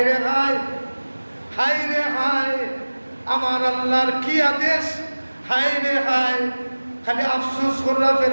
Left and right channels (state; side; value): inverted; both; correlation -1.00